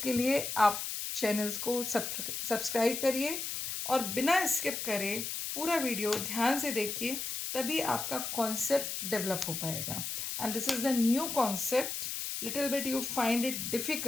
लिए आप चैनल्स को सब्सक्राइब करिए और बिना स्किप करे पूरा वीडियो ध्यान से देखिए, तभी आपका कॉन्सेप्ट डेवलप हो पाएगा. And this is the new concept. Little bit you find it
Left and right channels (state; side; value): noise; left; hiss, 4 dB below the sound